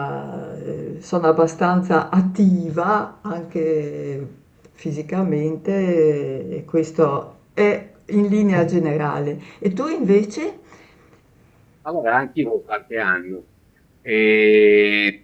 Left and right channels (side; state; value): both; identical; correlation 1.00